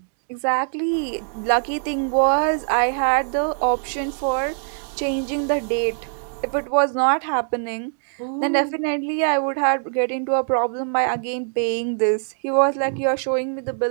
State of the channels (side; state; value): left; silent; digital silence